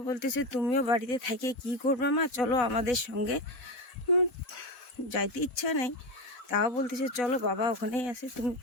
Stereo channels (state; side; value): late; right; 4.1 ms